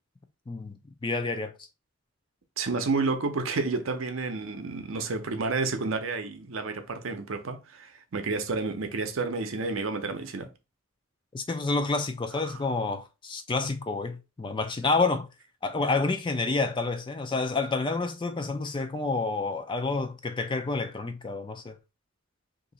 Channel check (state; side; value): normal; both; correlation 0.24